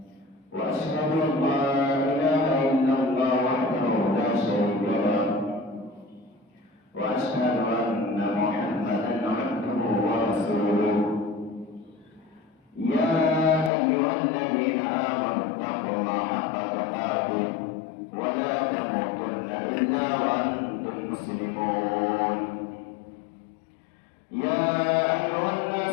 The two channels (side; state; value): right; drops out; at 13.7 s